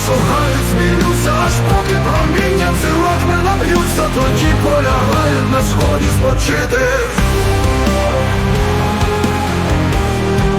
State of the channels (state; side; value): identical; both; correlation 1.00